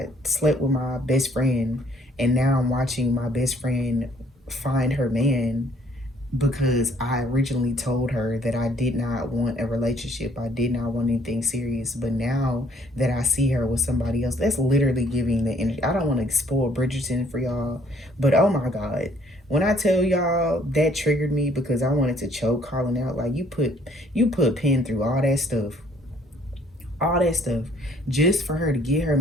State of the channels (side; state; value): both; normal; correlation 0.61